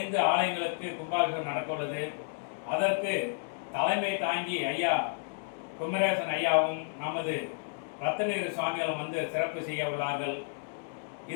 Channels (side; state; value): right; silent; digital silence